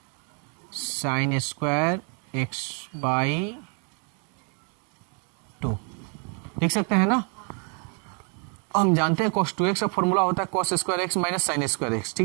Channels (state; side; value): quieter; left; 39.6 dB